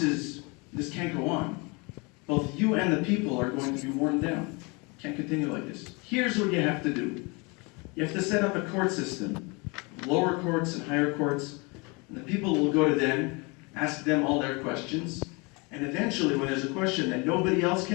can't go on. Both you and the people are going to be worn down. Can't continue like this. Here's what you have to do. You have to set up a court system, lower courts and higher courts, and the people will go to them, ask them all their questions, and eventually when there's a question that nobody else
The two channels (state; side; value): quieter; right; 28.8 dB